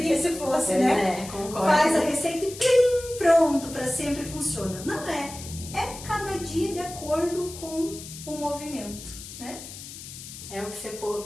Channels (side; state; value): left; noise; hiss, 13 dB below the sound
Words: se fosse, né? Concordo. Faz a receita e plim, pronto, para sempre funciona. Não é. É cada dia de acordo com o movimento, né? É o que você